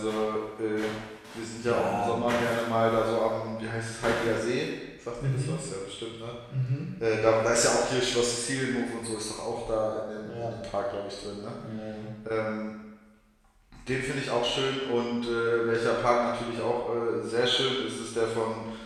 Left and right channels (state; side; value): identical; both; correlation 1.00